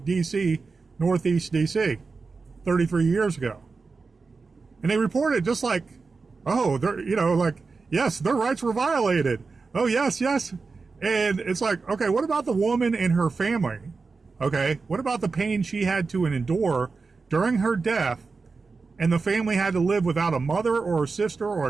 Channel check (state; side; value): quieter; left; 4.4 dB